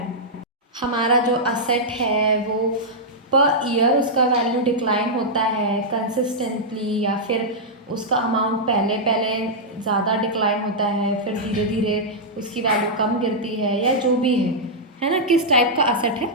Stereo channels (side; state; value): both; normal; correlation -0.08